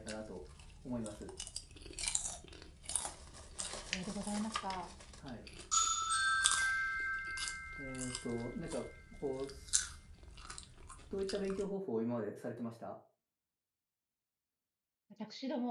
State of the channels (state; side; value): identical; both; correlation 1.00